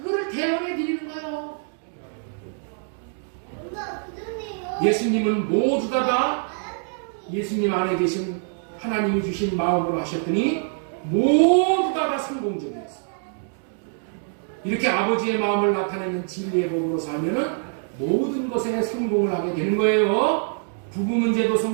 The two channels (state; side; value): silent; left; 62 dB below the other